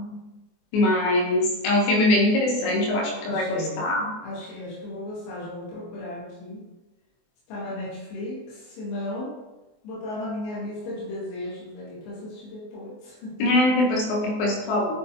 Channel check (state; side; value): late; right; 24 ms